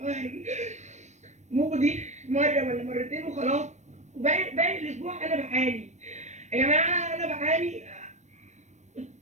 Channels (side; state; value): left; late; 0.34 ms